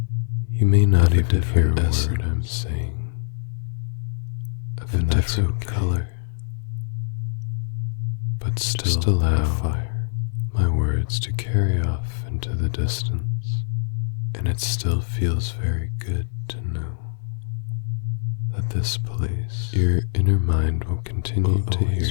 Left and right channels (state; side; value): silent; right; digital silence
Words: you may not even hear a word I'm saying, of a different color, but still just allow my words to carry off into the distance, and it still feels very good to know that this place, your inner mind will continue to